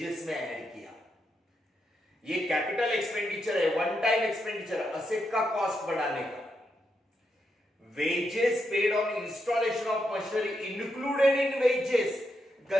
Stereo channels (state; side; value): normal; both; correlation 0.83